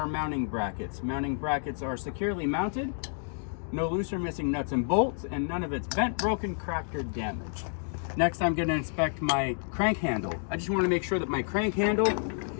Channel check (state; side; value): silent; right; 57 dB below the other